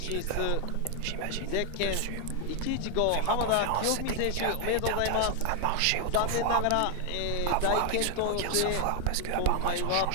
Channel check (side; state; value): both; different; correlation 0.00